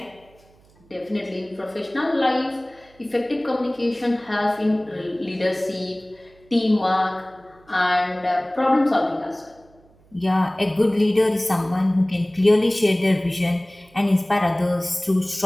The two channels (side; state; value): right; noise; hum, 30 dB below the sound